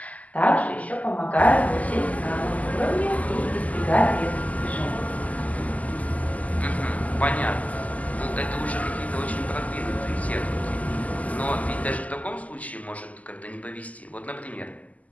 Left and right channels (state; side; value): late; right; 0.074 ms